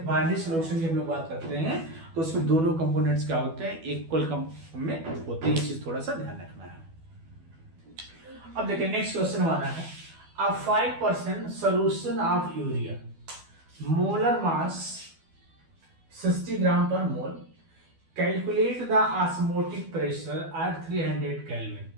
बाइनरी सॉल्यूशन की हम लोग बात करते हैं तो उसमें दोनों कंपोनेंट्स क्या होते हैं, इक्वल में होते हैं। ये चीज थोड़ा सा ध्यान रखना है। अब देखिए नेक्स्ट क्वेश्चन हमारा है, a 5% solution of urea, molar mass 60 gram per mole, calculate the osmotic pressure at 300 kelvin.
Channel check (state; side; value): late; left; 12 ms